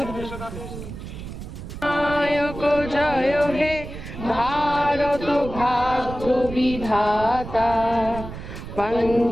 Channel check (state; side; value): noise; right; rumble, 10 dB below the sound